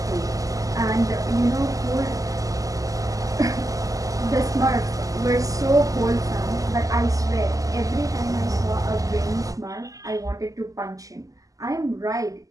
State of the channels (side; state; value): left; late; 0.17 ms